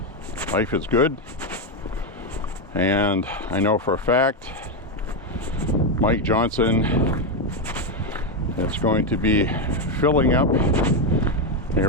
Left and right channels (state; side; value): normal; both; correlation 0.06